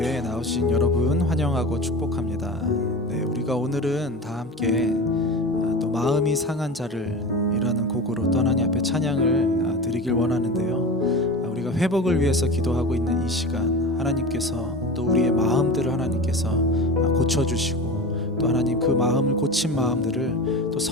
나오신 여러분 환영하고 축복합니다. 우리가 오늘은 다 함께 또 마음이 상한 자를이라는 곡으로 또 하나님 앞에 찬양을 드리길 원하는데요. 우리가 회복을 위해서 기도하고 있는 이 시간, 하나님께서 또 우리의 마음들을 하나님께서 고쳐주시고 또 하나님 그 마음을 고친 마음들을 또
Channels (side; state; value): both; normal; correlation 0.30